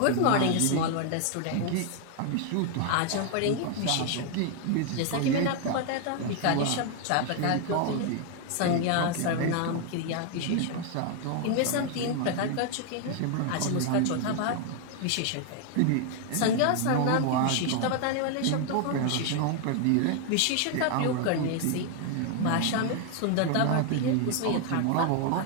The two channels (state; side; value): different; both; correlation 0.00